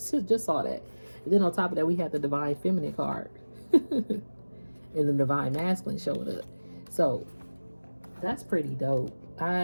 And then on top of that, we had the divine feminine card. And the divine masculine showed up. So that's pretty dope.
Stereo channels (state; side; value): inverted; both; correlation -1.00